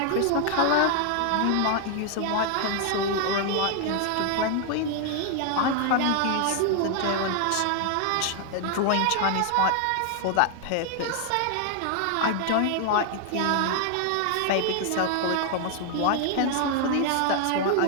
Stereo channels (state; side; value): different; both; correlation 0.00